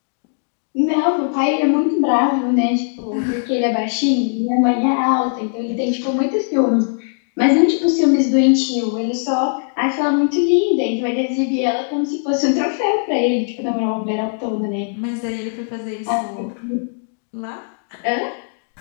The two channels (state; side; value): silent; right; digital silence